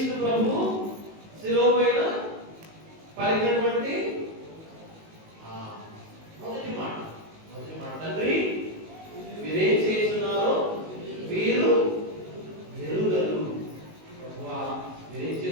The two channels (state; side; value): late; left; 19 ms